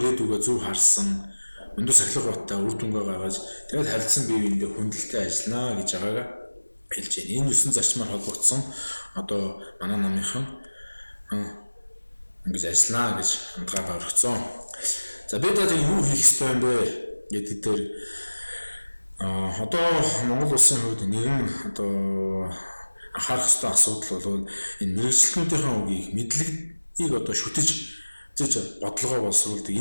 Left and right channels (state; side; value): inverted; both; correlation -1.00